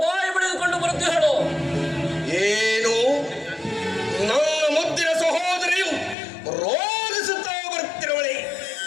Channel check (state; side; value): drops out; right; at 6.2 s